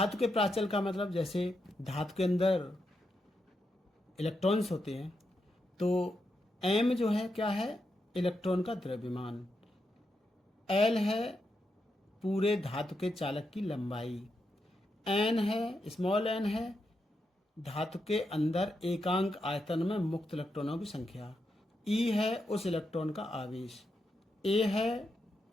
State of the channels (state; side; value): normal; both; correlation 0.84